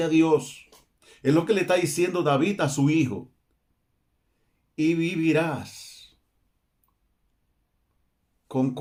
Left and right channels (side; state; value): both; identical; correlation 1.00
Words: a Dios. Es lo que le está diciendo David a su hijo. Y vivirás con